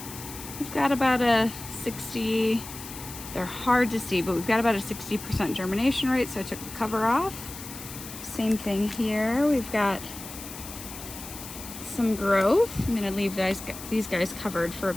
we've got about a 60, they're hard to see, but we've got about a 60% germination rate, so I took the cover off. Same thing here, we've got some growth. I'm gonna leave these guys covered for a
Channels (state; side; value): noise; left; hiss, 12 dB below the sound